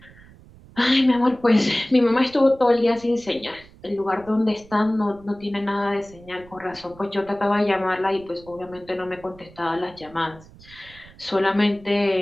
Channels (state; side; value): noise; right; rumble, 23 dB below the sound